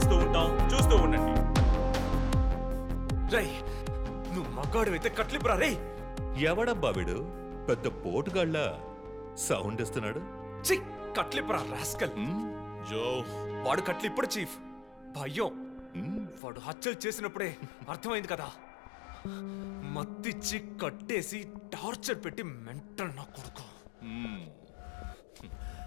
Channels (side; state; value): right; drops out; at 16.4 s